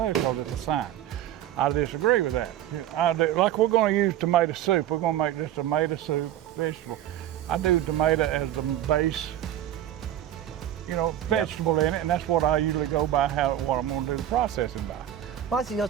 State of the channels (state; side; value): quieter; left; 11.8 dB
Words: because it's a science. I disagree with that. Like we're going to use tomato soup. We're going to make this tomato soup vegetable. I do tomato as the base, you know, vegetable in it, and that's what I usually go by, what I'm going to do the processing by. Well, it's, you know,